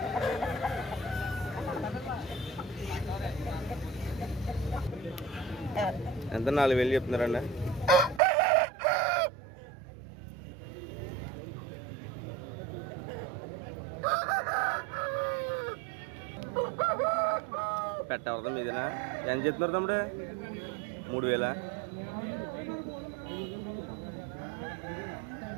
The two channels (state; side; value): drops out; left; at 8.2 s